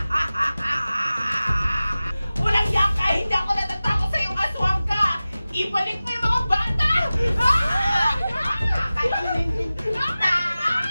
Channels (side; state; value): both; inverted; correlation -0.96